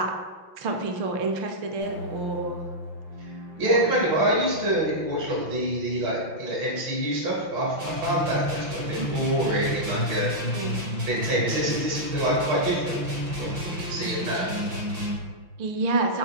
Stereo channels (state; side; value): late; left; 5.9 ms